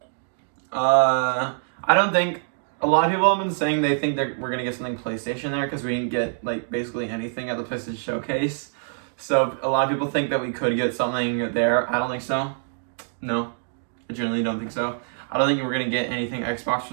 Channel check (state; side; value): silent; left; digital silence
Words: I don't think, a lot of people have been saying they think that we're gonna get something PlayStation there because we didn't get like basically anything at the PlayStation Showcase. So a lot of people think that we could get something there. I don't think so. No, I generally don't think so. I don't think we're gonna get anything Xbox